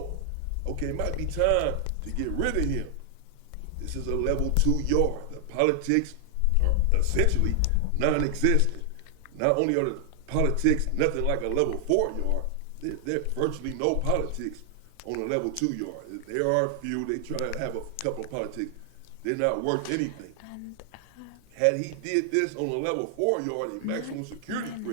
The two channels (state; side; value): different; both; correlation 0.00